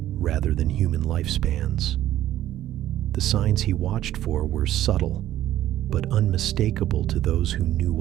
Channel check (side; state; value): left; quieter; 13.1 dB